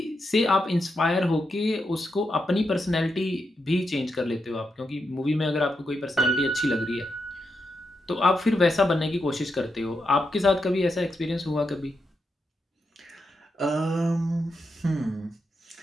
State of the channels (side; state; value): both; normal; correlation 0.84